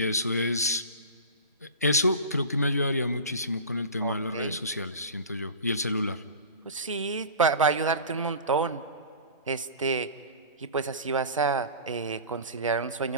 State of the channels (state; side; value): inverted; both; correlation -0.35